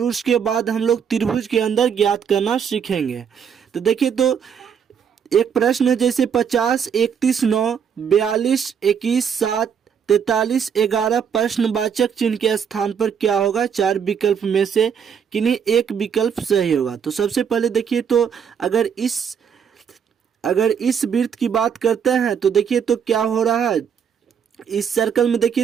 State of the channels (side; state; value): left; quieter; 7.4 dB